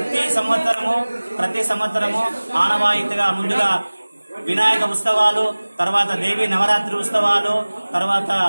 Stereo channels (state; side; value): inverted; both; correlation -1.00